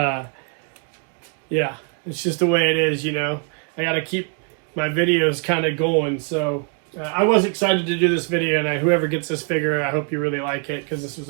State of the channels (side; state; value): left; quieter; 38.8 dB